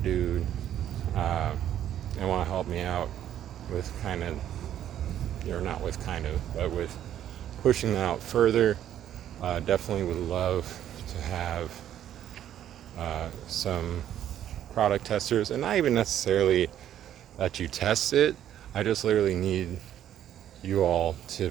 dude, and want to help me out with but with pushing that out further, definitely would love to have some product testers, and not even necessarily that you test it. I just literally need you all to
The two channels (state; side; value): quieter; left; 11.0 dB